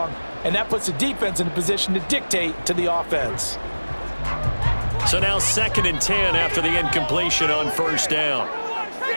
and that puts the defense in a position to dictate to the offense. So now 2nd and 10 after the incompletion on first down.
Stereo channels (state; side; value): inverted; both; correlation -1.00